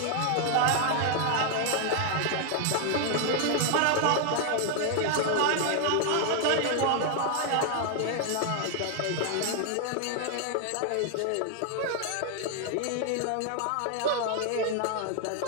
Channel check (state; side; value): different; both; correlation 0.00